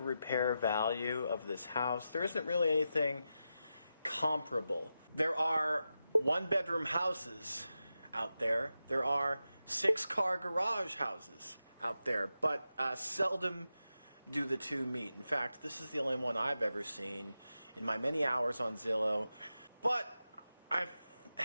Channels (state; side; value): inverted; both; correlation -0.90